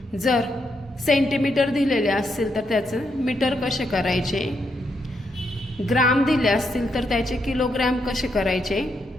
जर सेंटीमीटर दिलेले असतील तर त्याचं मीटर कसे करायचे, ग्राम दिले असतील तर त्याचे किलोग्राम कसे करायचे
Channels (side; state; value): both; normal; correlation 0.80